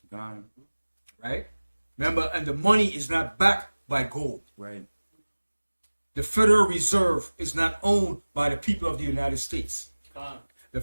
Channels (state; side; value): inverted; both; correlation -1.00